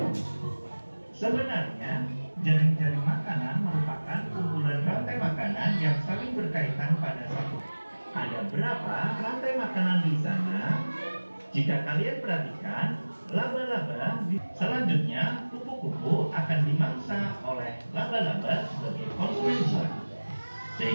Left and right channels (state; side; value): inverted; both; correlation -1.00